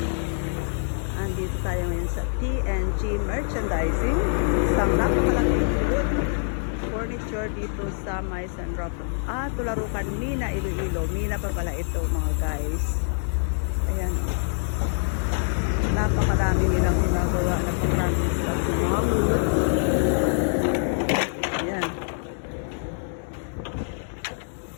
Andito tayo ngayon sa TNG Merchandising. Isang napakalaking wood furniture dito sa May San Rafael. Tularukan, Mina, Iloilo. Mina pa pala ito, mga guys. Ayan, o. Napakarami nilang ginagawa na pang-practice sa mga wood. Ayan.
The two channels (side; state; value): right; silent; digital silence